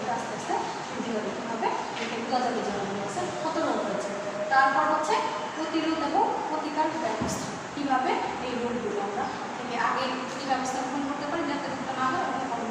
আস্তে আস্তে ভিডিও দেখতে হবে, এটা বোঝা যাবে যে মাছের কত রোগ হয়েছে। তারপর হচ্ছে প্রতিরোধ এবং প্রতিকার ব্যবস্থা, কীভাবে এই রোগগুলো আমরা থেকে আগে কী ব্যবস্থা গ্রহণ করতে পারি যাতে রোগটা না হয়, এবং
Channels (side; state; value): both; identical; correlation 1.00